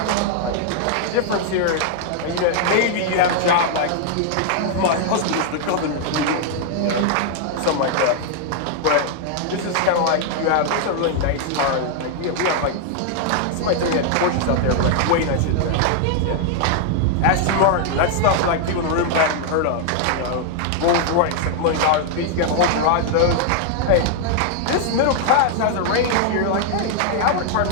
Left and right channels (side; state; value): both; different; correlation 0.00